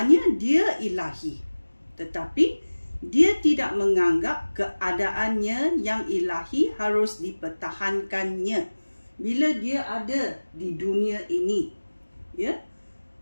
dia ilahi, tetapi dia tidak menganggap keadaannya yang ilahi harus dipertahankannya bila dia ada di dunia ini. Ya,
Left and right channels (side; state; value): both; inverted; correlation -1.00